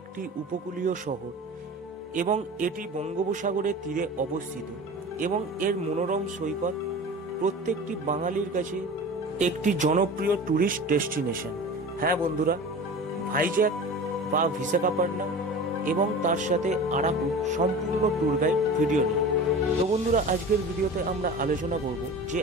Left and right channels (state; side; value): normal; both; correlation 0.35